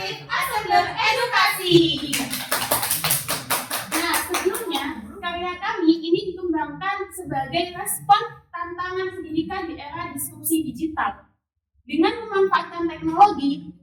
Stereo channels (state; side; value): identical; both; correlation 1.00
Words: Assembler Edukasi. Nah, sebelumnya karya kami ini dikembangkan sebagai respon tantangan pendidikan di era disrupsi digital. Dengan memanfaatkan teknologi,